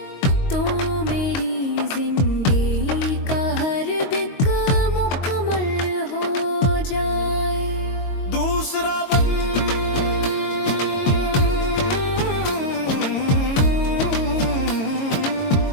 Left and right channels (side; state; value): right; late; 22 ms